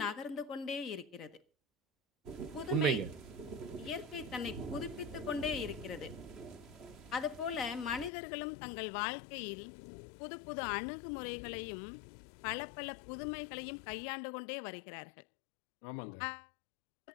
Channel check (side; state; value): right; drops out; at 8.1 s